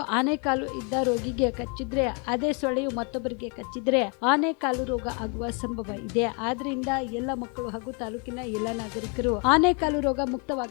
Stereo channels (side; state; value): right; quieter; 35.6 dB